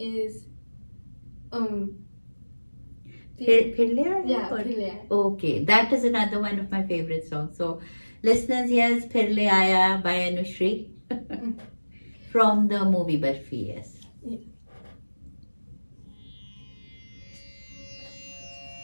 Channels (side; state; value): both; inverted; correlation -1.00